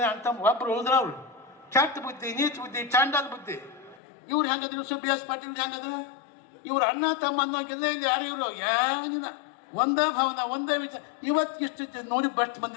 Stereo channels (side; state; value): right; drops out; at 4.0 s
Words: ಅಂತ ಒಬ್ಬರು ಹೋದ್ರ ಅವ್ರು. ಕೆಟ್ಟ ಬುದ್ಧಿ, ನೀಚ ಬುದ್ಧಿ, ಚಾಂಡಾಲ್ ಬುದ್ಧಿ. ಇವ್ರು ಹೆಂಗದ್ರು ಬಿ ಎಸ್ ಪಾಟೀಲ್ ಹೆಂಗದ್ರು? ಇವ್ರು ಅಣ್ಣ ತಮ್ಮ ಅನ್ನೋಂಗಿಲ್ಲ, ಇಲ್ಲಿ ಯಾರು ಇವರು ಏನಿಲ್ಲ. ಒಂದೇ ಭಾವನ, ಒಂದೇ ವಿಚಾರ. ಇವತ್ತು ಇಷ್ಟು ನೋಡಿ ಬಸ್ಟ್